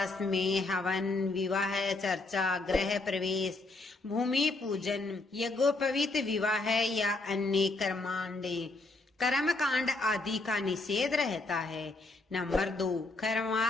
में हवन, विवाह, चर्चा, गृह प्रवेश, भूमि पूजन, यज्ञोपवीत विवाह या अन्य कर्मकांड आदि का निषेध रहता है। नंबर 2,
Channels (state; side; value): quieter; right; 3.2 dB